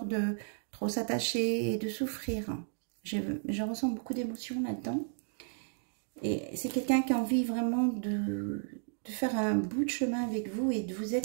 de trop s'attacher et de souffrir. Je ressens beaucoup d'émotions là-dedans. Et c'est quelqu'un qui a envie vraiment de faire un bout de chemin avec vous et de vous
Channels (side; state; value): left; silent; 55 dB below the other